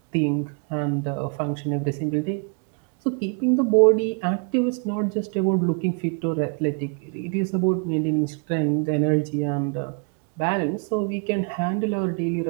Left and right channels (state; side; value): quieter; left; 37.5 dB